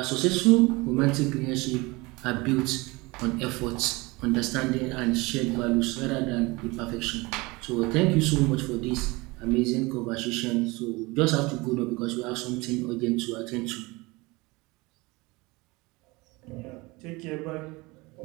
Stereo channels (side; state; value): left; quieter; 23.8 dB